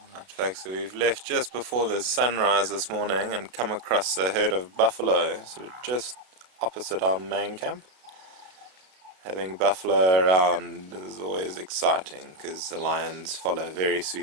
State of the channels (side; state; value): left; late; 32 ms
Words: Right, folks, so we've left just before the sunrise this morning and come across a herd of buffalo sort of just opposite our main camp. Having buffalo around is always exciting because the lions follow very